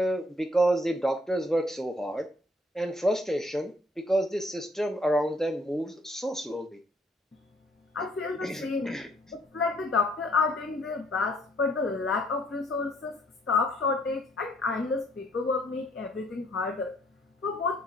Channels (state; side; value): normal; both; correlation 0.66